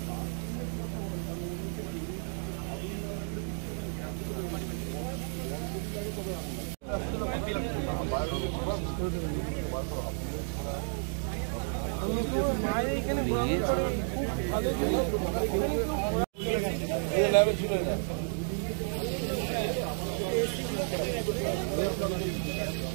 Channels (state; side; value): silent; left; 56 dB below the other